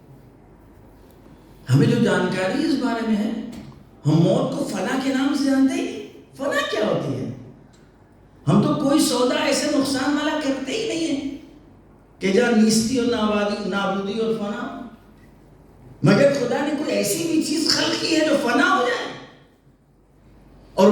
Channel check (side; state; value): both; identical; correlation 1.00